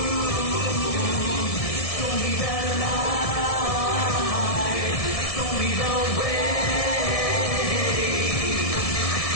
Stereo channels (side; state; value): right; late; 1.6 ms